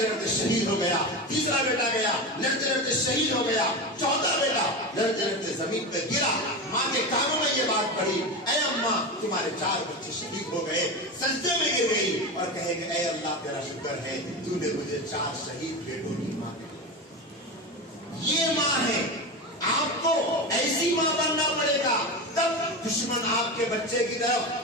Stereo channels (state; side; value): normal; both; correlation 0.22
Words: लड़ते शहीद हो गया। तीसरा बेटा गया, लड़ते लड़ते शहीद हो गया। चौथा बेटा लड़ते लड़ते जमीन पे गिरा। माँ के कानों में ये बात पड़ी, ऐ अम्मा, तुम्हारे 4 बच्चे शहीद हो गए। सजदे में गिर गई और कहेंगे, ऐ अल्लाह तेरा शुक्र है, तूने मुझे 4 शहीद बेटों की माँ दी। ये माँ है। आपको ऐसी माँ बनना पड़ेगा, तब दुश्मन आपके बच्चे की तरफ